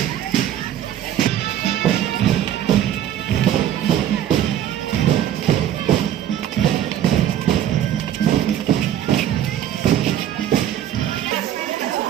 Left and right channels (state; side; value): quieter; left; 10.9 dB